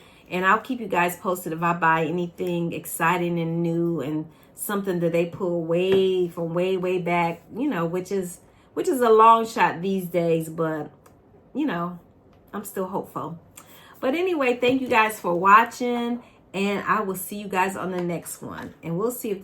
and I'll keep you guys posted if I buy anything exciting and new and something that they pull way from way back, you know, which is a long shot these days, but you know, I'm still hopeful. But anyway, thank you guys for watching, and I will see you guys on the next one, and we'll see if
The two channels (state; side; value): identical; both; correlation 1.00